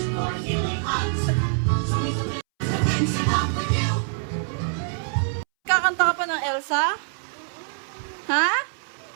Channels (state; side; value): silent; left; 62 dB below the other